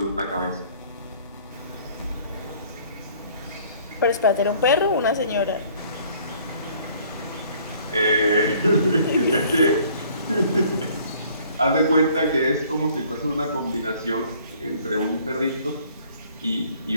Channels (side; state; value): both; inverted; correlation -0.57